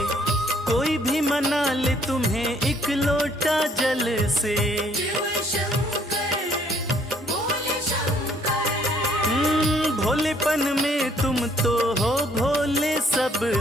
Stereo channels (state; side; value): normal; both; correlation 0.64